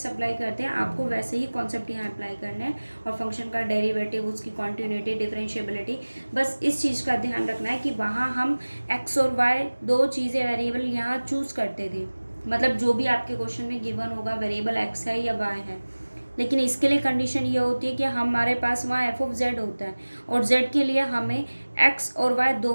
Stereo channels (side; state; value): both; inverted; correlation -1.00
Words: अप्लाई करते हैं आपको वैसे ही कॉन्सेप्ट यहाँ अप्लाई करना है. और फंक्शन का डेरिवेटिव, उसकी कॉन्टिन्यूटी, डिफरेंशिएबिलिटी, बस इस चीज़ का ध्यान रखना है कि वहाँ हम x और y दो चीज़ें वेरिएबल यहाँ चूज़ करते थे. मतलब जो भी आपके क्वेश्चन में गिवन होगा वेरिएबल x है या y है, लेकिन इसके लिए कंडीशन ये होती है कि हमारे पास वहाँ एफ ऑफ जेड होता है और जेड के लिए हमें एक्स और वाई